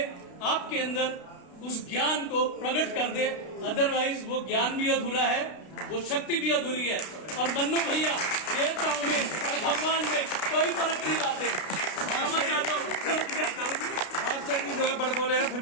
आपके अंदर उस ज्ञान को प्रकट कर दे। अदरवाइज वो ज्ञान भी अधूरा है, वो शक्ति भी अधूरी है। और मन्नू भैया देवताओं में और भगवान में कोई फर्क नहीं लाते। मास्टर जी जो है बड़ बोले हैं, फिर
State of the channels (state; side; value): late; right; 32 ms